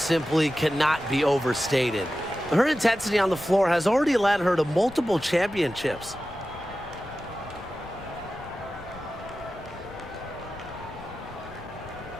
cannot be overstated. Her intensity on the floor has already led her to multiple championships.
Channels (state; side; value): noise; left; rumble, 18 dB below the sound